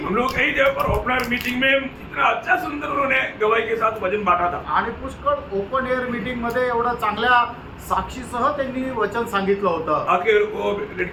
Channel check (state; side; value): identical; both; correlation 1.00